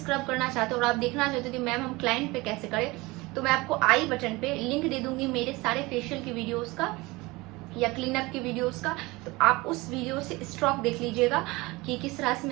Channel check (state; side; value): quieter; left; 22.4 dB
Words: करना चाहते हो और आप देखना चाहते हो कि मैम हम क्लाइंट पे कैसे करें, तो मैं आपको आई बटन पे लिंक दे दूंगी मेरे सारे फेशियल की वीडियोस का या क्लीन अप की वीडियोस का। तो आप उस वीडियो से स्ट्रोक देख लीजिएगा कि किस तरह से